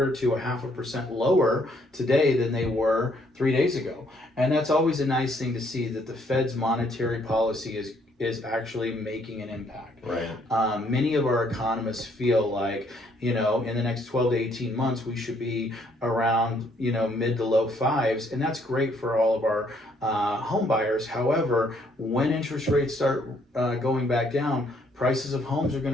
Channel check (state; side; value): normal; both; correlation 0.68